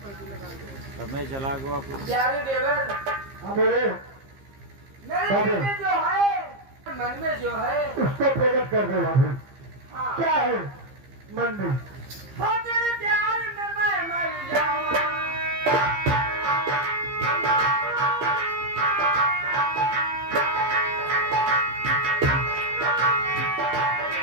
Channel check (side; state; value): left; late; 15 ms